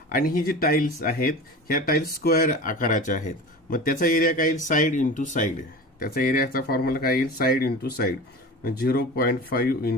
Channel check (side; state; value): both; normal; correlation 0.33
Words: आणि ही जी टाईल्स आहेत ह्या टाईल्स स्क्वेअर आकाराच्या आहेत, मग त्याचा एरिया काय येईल, साईड इंटू साईड. त्याचा एरियाचा फॉर्म्युला काय येईल, साईड इंटू साईड, 0.5